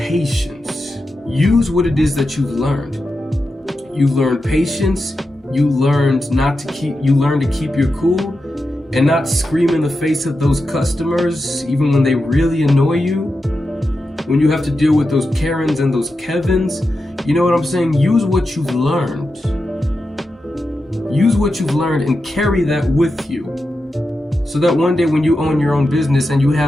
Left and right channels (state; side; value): normal; both; correlation 0.89